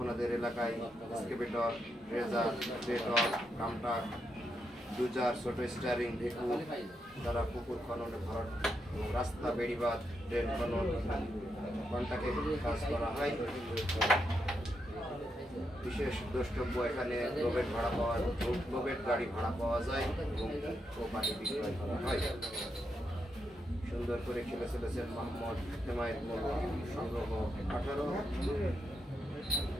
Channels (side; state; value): both; normal; correlation 0.82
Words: এলাকায় এক্সকেভেটর, রেজার, বেটর, কামটাক, ডুজার, ছোট স্টারিং, ঢেকু দ্বারা পুকুর খননে ভরাট এবং রাস্তা, বেড়িবাঁধ, ড্রেন খনন, কন্টাকে কাজ করা হয়। বিশেষ দ্রষ্টব্য, এখানে লোবেট গাড়ি ভাড়া পাওয়া যায় এবং পানি বিক্রয় করা হয়। সুন্দর করে খেলে চলেছেন মোহাম্মদ হেমায়েত মোল্লা, সংগ্রহ 18।